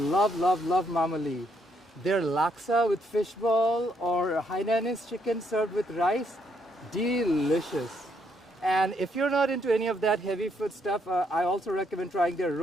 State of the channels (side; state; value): both; normal; correlation 0.73